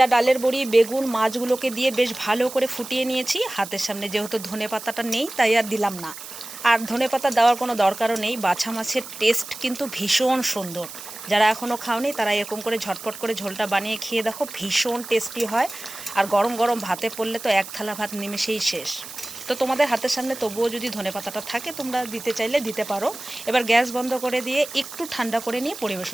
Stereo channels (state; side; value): noise; right; hiss, 13 dB below the sound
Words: ডালের বড়ি, বেগুন, মাছগুলোকে দিয়ে বেশ ভালো করে ফুটিয়ে নিয়েছি। হাতের সামনে যেহেতু ধনেপাতাটা নেই, তাই আর দিলাম না। আর ধনেপাতা দেওয়ার কোনো দরকারও নেই, বাছা মাছের টেস্ট কিন্তু ভীষণ সুন্দর। যারা এখনও খাওনি তারা এরকম করে ঝটপট করে ঝোলটা বানিয়ে খেয়ে দেখো, ভীষণ টেস্টি হয়। আর গরম গরম ভাতে পড়লে তো এক থালা ভাত নিমেষেই শেষ। তো তোমাদের হাতের সামনে তবুও যদি ধনেপাতাটা থাকে, তোমরা দিতে চাইলে দিতে পারো। এবার গ্যাস বন্ধ করে দিয়ে একটু ঠান্ডা করে নিয়ে